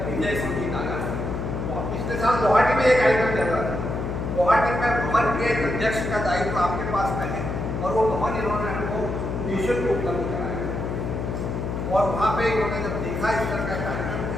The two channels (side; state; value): left; noise; hum, 3 dB below the sound